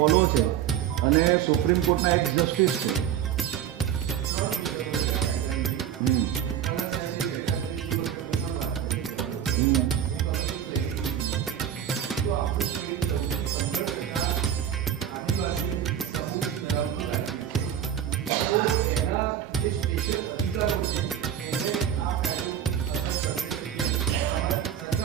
છે અને સુપ્રીમ કોર્ટના એક્સ જસ્ટિસ છે.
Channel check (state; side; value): quieter; left; 9.8 dB